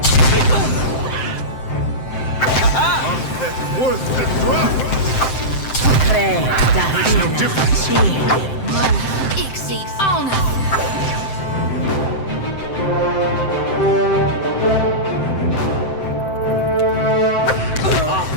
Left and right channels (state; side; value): late; right; 7.7 ms